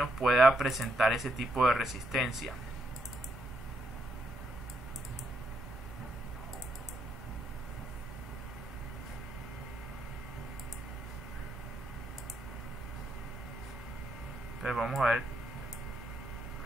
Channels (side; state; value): both; normal; correlation 0.77